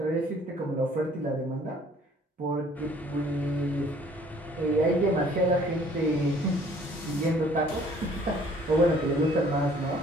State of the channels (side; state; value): both; normal; correlation 0.57